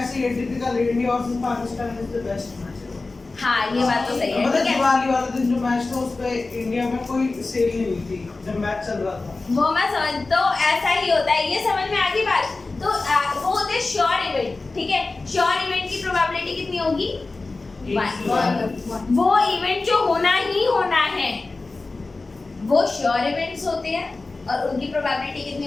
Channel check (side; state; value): right; quieter; 3.5 dB